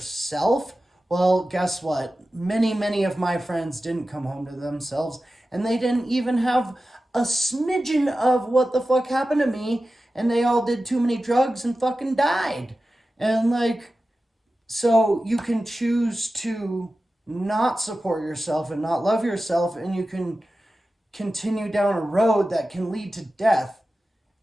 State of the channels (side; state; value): both; normal; correlation 0.94